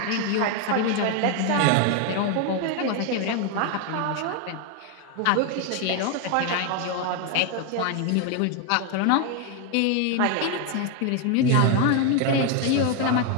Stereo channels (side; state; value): both; different; correlation 0.01